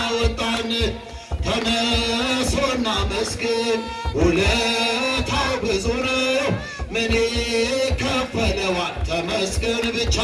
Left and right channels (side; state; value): both; identical; correlation 1.00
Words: ተነሱና መስግን ውለታው ብዙ ነው ምን ይከፈለዋል? ተመስገን ብቻ